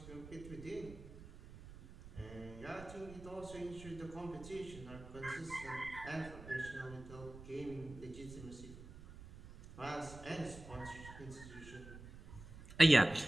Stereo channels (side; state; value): right; noise; rumble, 15 dB below the sound